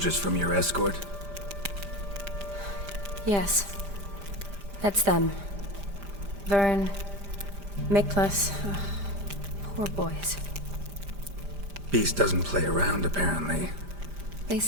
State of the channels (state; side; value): late; left; 5.0 ms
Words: from your escort? Yes. That's them. Vern, Miklas. Poor boys. Beast doesn't play around, apparently. They